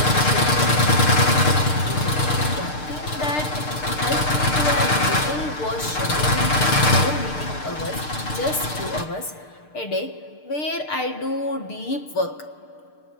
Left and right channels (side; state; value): right; late; 6.6 ms